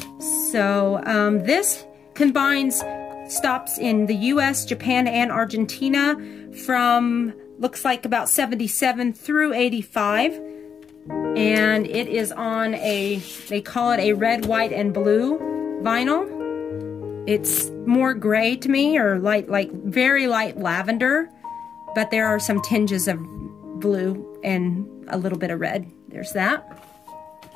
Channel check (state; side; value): quieter; right; 7.0 dB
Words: So this combines stops in the US, Japan, and Argentina from, looks like about 77 through 85. And it is on a, they call it a red, white, and blue vinyl. It's more gray to me, or light, like very light lavender, but there are some tinges of blue and a little bit of red. There's that.